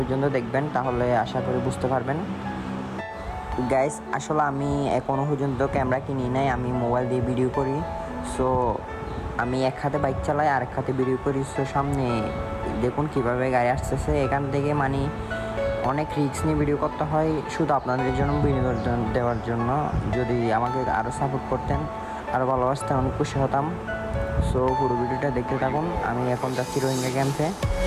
দেখবেন, তাহলে আশা করি বুঝতে পারবেন। গাইস, আসলে আমি এখনও পর্যন্ত ক্যামেরা কিনি নাই, আমি মোবাইল দিয়ে ভিডিও করি। সো আমি এক হাতে বাইক চালাই আর এক হাতে ভিডিও করি। সো সামনে দেখুন কিভাবে গাড়ি আসতেছে, এখান থেকে অনেক রিস্ক নিয়ে ভিডিও করতে হয় শুধু আপনাদের জন্য, বিনোদন দেওয়ার জন্য। যদি আমাকে আরও সাপোর্ট করতেন, আরও ভালোবাসতেন, অনেক খুশি হতাম। সো পুরো ভিডিওটা দেখতে থাকুন। আমি এখন যাচ্ছি রোহিঙ্গা ক্যাম্পে,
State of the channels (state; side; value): identical; both; correlation 1.00